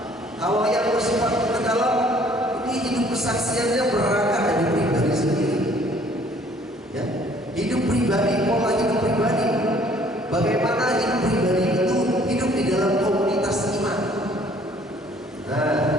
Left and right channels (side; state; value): both; normal; correlation 0.58